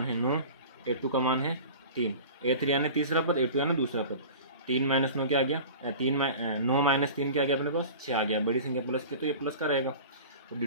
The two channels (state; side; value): inverted; both; correlation -0.37